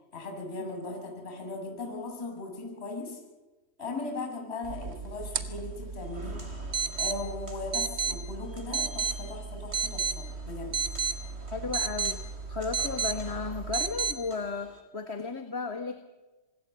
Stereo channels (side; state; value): left; late; 3.2 ms